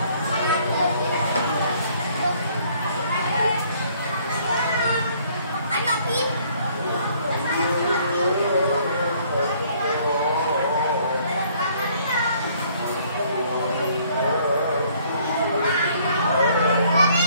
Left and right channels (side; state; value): both; inverted; correlation -0.61